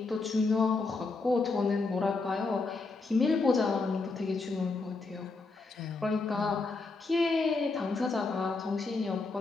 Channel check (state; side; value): quieter; right; 3.9 dB